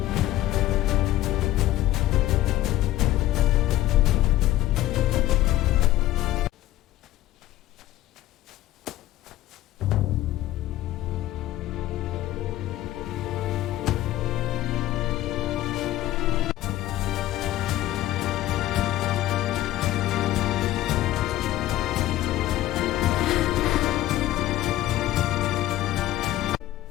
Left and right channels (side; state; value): right; quieter; 15.0 dB